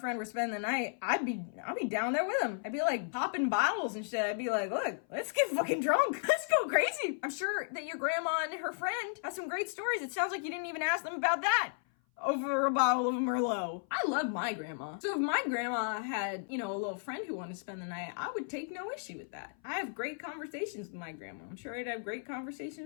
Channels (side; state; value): right; silent; 55 dB below the other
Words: were spending the night, I'd be down there with them. I'd be like popping bottles and shit. I'd be like, look, let's get fucking drunk. Let's go crazy. I'm sure that your grandma and her friend have some great stories. It sounds like you didn't even ask them about that over a bottle of Merlot. I love my grandma. So if my grandma had, a little friend who wanted to spend the night, I would take no issue with that. I have great conversations with my grandma. I'm sure I'd have great